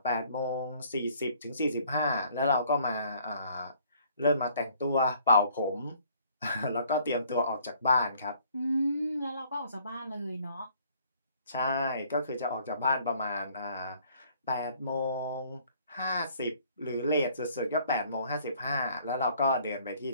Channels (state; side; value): inverted; both; correlation -0.60